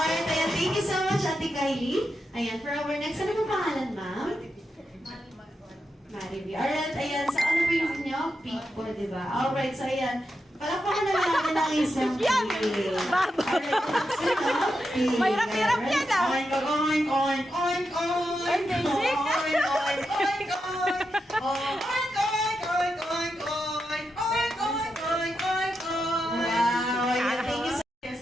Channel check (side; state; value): both; normal; correlation 0.86